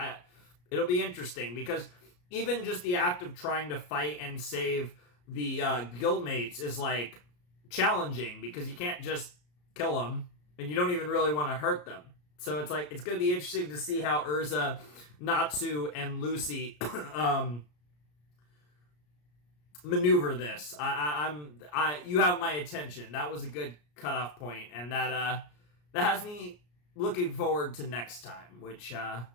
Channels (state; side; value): late; right; 34 ms